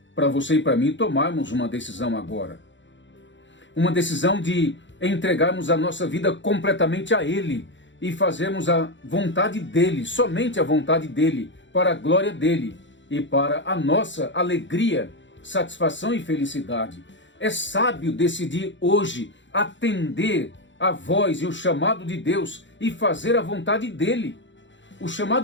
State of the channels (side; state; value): right; late; 0.54 ms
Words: para você e para mim tomarmos uma decisão agora. Uma decisão de entregarmos a nossa vida completamente a Ele e fazermos a vontade dEle, somente a vontade dEle, para a glória dEle e para a nossa alegria, satisfação e felicidade. É sábio decidir hoje atender a voz e o chamado de Deus e fazer a vontade dele. O